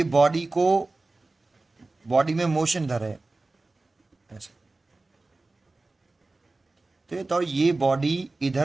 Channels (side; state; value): left; quieter; 3.3 dB